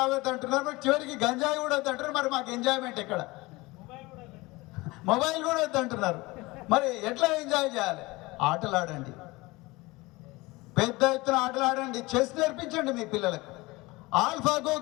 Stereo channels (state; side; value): quieter; right; 22.2 dB